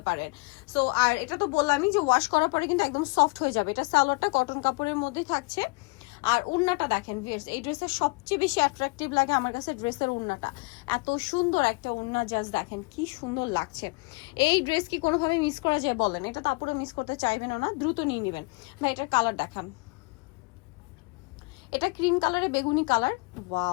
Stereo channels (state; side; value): quieter; right; 28.2 dB